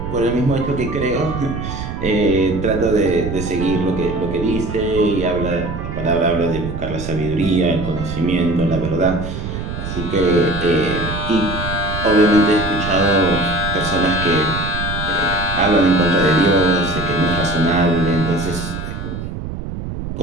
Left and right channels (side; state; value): right; noise; rumble, 6 dB below the sound